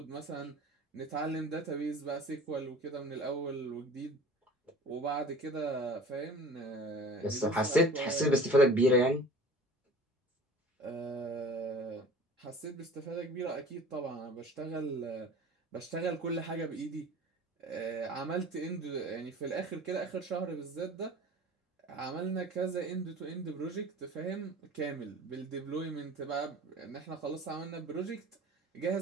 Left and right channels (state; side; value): normal; both; correlation 0.42